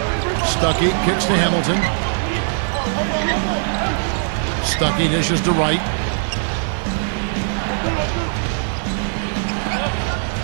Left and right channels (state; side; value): silent; left; digital silence